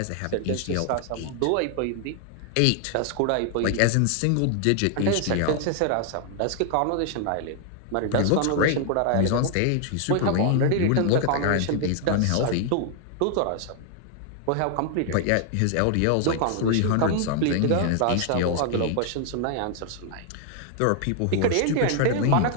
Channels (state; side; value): different; both; correlation 0.00